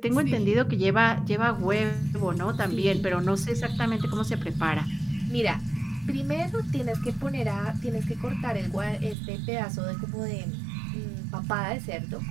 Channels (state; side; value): drops out; left; at 9.2 s